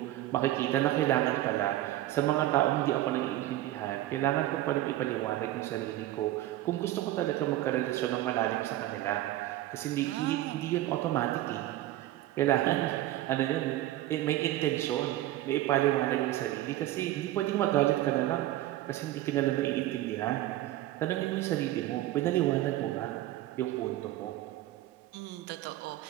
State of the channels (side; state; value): left; quieter; 14.9 dB